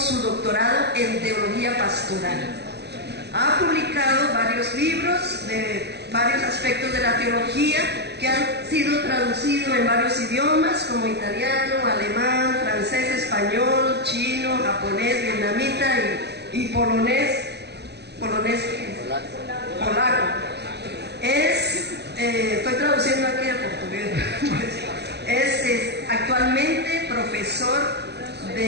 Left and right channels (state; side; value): late; left; 0.48 ms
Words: doctorado en teología pastoral. Ha publicado varios libros de varios aspectos de la teología que han sido traducidos en varios idiomas como italiano, alemán, francés, español, chino, japonés, vietnamita y polaco. Estoy traduciendo aquí al portugués. Es actualmente profesor